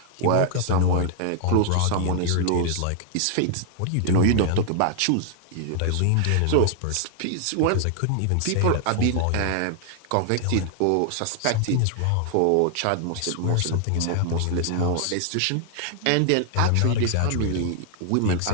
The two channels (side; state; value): both; different; correlation 0.00